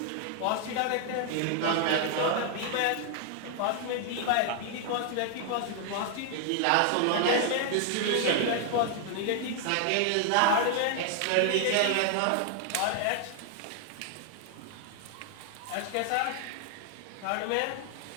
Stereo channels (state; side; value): different; both; correlation 0.00